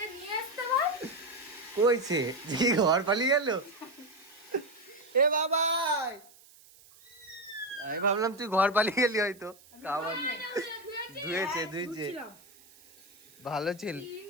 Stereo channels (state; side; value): noise; right; hiss, 25 dB below the sound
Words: নিয়ে আসতে বল। কইছে যে ঘর পালিয়ে গেল। এ বাবাই, আমি ভাবলাম তুই ঘর পালিয়ে গেলি হয়তো। খাবার ধুয়েছে ধুয়েছে, ভালো ছিল।